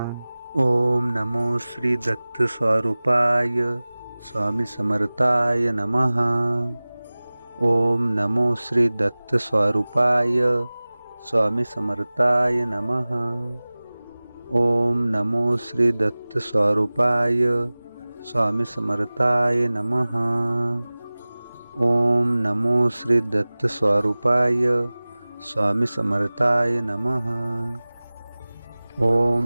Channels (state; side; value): inverted; both; correlation -0.99